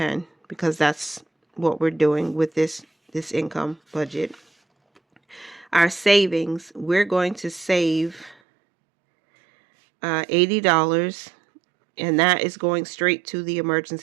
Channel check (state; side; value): drops out; left; at 8.3 s